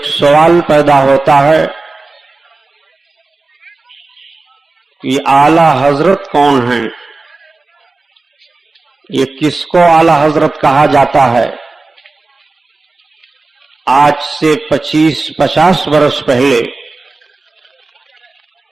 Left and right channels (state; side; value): quieter; left; 3.5 dB